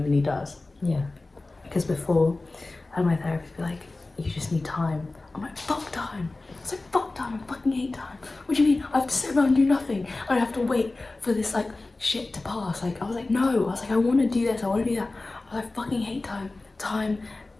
does. Yeah. Because before, I had my therapist be like, you just need time. I'm like, fuck time. It's like, fuck time, I fucking hate time. What do you mean? I have to sit around and do nothing. I have to wait for this like shit to pass. Like, I was like, no. I was like, I want to do this, I want to do that. I was like, I fucking hate time. Time,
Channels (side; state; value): right; quieter; 3.2 dB